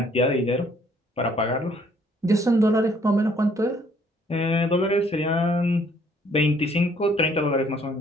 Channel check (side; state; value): both; normal; correlation 0.63